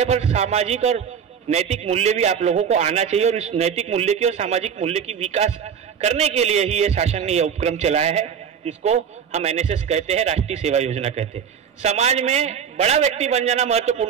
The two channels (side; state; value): left; quieter; 7.5 dB